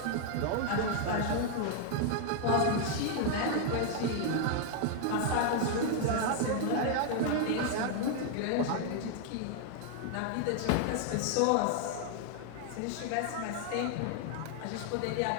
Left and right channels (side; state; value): both; different; correlation 0.00